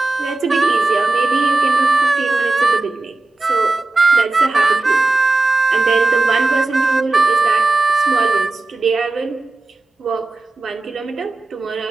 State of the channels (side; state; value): left; quieter; 3.3 dB